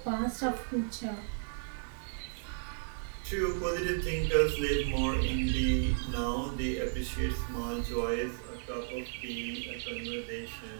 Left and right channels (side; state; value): left; silent; 55 dB below the other